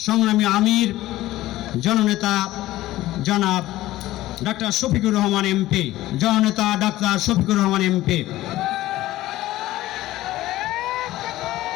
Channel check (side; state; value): right; quieter; 16.0 dB